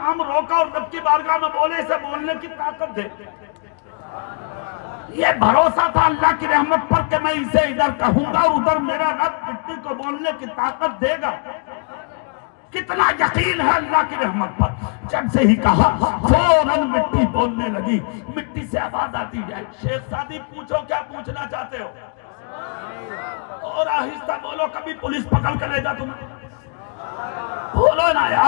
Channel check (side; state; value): right; quieter; 37.7 dB